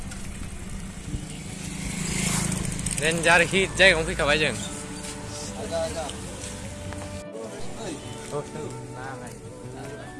रेन्जार हिट जायगायावनो फैखाबाय जों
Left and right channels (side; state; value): both; identical; correlation 1.00